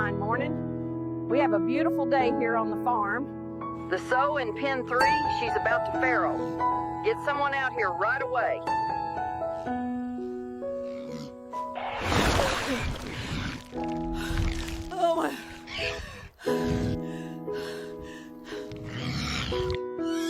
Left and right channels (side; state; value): both; identical; correlation 1.00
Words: morning? We have a beautiful day here on the farm. The sow in pen 3, she's about to farrow. Get someone out here right away. Oh my.